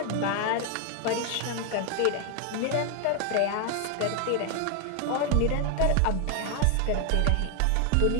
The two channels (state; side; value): different; both; correlation 0.01